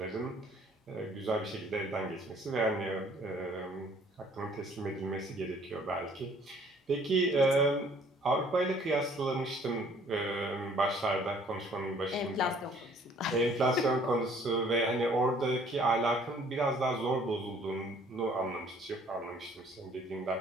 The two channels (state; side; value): normal; both; correlation 0.58